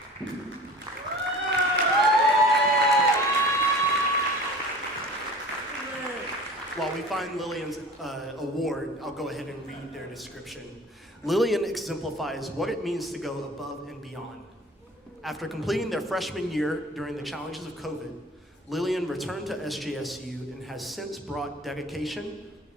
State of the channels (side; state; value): both; normal; correlation 0.42